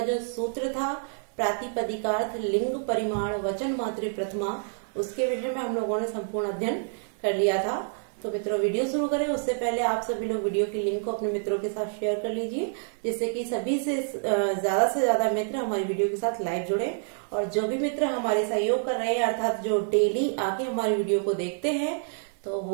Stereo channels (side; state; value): left; silent; digital silence